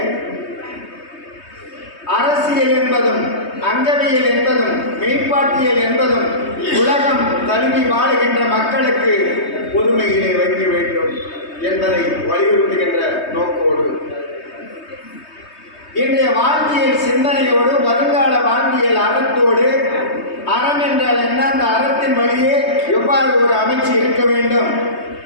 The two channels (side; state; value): right; late; 3.2 ms